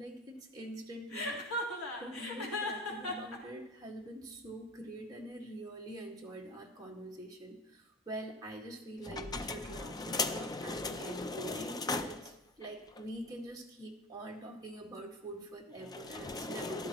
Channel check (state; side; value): normal; both; correlation 0.32